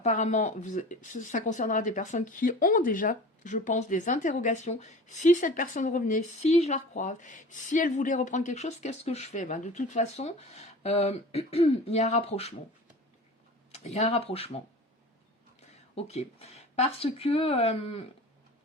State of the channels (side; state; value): both; normal; correlation 0.39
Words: ça concernera des personnes qui ont déjà, je pense, des interrogations. Si cette personne revenait, si je la recroise, si elle voulait reprendre quelque chose, qu'est-ce que je fais? De toute façon, il y a un rapprochement. Il y a un rapprochement. Ok. Parce que